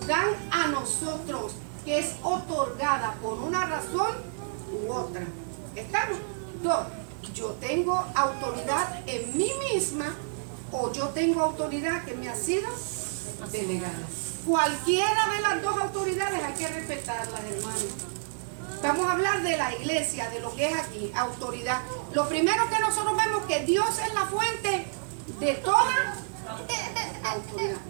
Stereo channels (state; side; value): silent; left; digital silence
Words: dan a nosotros, que es otorgada por una razón u otra. ¿Estamos? Dos, yo tengo autoridad en mí misma o yo tengo autoridad que me ha sido delegada. Cualquiera de las dos autoridades hay que respetarlas, hermanos. Vamos a hablar de la iglesia, de lo que es aquí, autoridad. Lo primero que nosotros vemos que Dios es la fuente de toda autoridad.